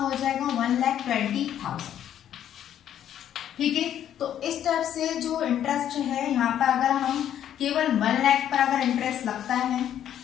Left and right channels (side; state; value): right; quieter; 10.5 dB